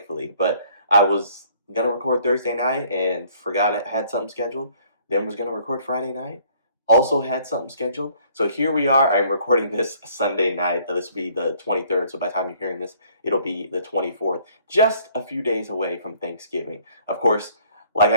But I was going to record Thursday night and forgot I had something scheduled. Then was going to record Friday night. Also had something scheduled. So here we are. I'm recording this Sunday night. This will be the 23rd. So by the time you're hearing this, it'll be the 24th. Just a few days away from Thanksgiving. Of course, like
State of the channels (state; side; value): inverted; both; correlation -0.59